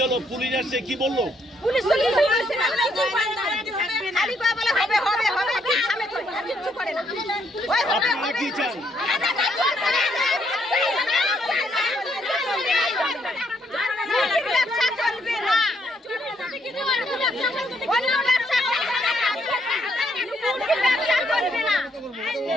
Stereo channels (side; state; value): both; normal; correlation 0.72